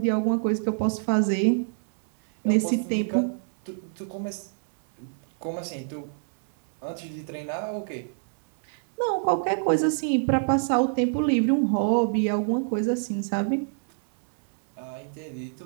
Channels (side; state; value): left; silent; digital silence